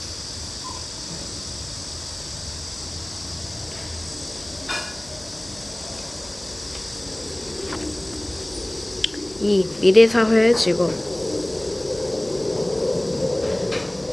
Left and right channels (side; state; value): left; noise; hum, 22 dB below the sound